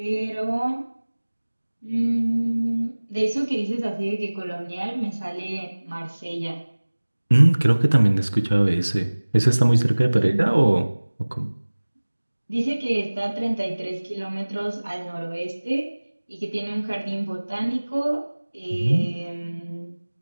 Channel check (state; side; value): inverted; both; correlation -1.00